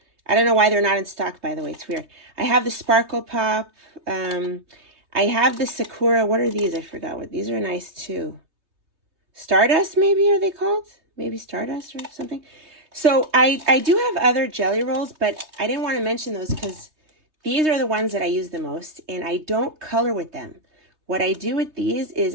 I don't know why they're not in stock, by the way. It's weird. I have the Sparkle Pop. I have the Sakura. What are these? I forgot what. These are nice, too. Stardust, maybe, are they called? Maybe Stardust or something. So I do have other jelly rolls, but I didn't want to mention those because these are the ones that I use the most, and I don't color with them. what I do with these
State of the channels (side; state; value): left; late; 3.2 ms